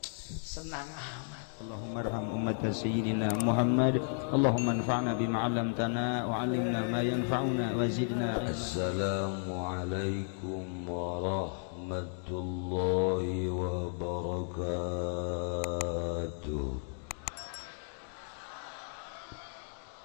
Senang amat. Allahumma arham ummat sayyidina Muhammad. Allahumma anfa'na bima 'allamtana wa 'allimna ma yanfa'una wa zidna. Assalamualaikum warahmatullahi wabarakatuh.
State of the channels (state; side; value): silent; right; digital silence